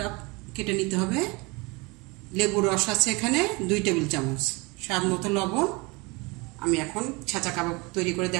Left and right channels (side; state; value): left; quieter; 26.6 dB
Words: কেটে নিতে হবে। লেবুর রস আছে এখানে 2 টেবিল চামচ, স্বাদ মতো লবণ। আমি এখন ছেঁচা কাবাব তৈরি করে